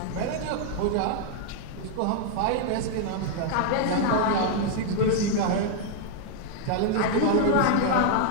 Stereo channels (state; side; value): different; both; correlation -0.01